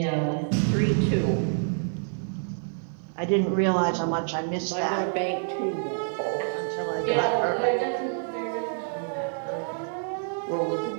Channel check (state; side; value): silent; left; 60 dB below the other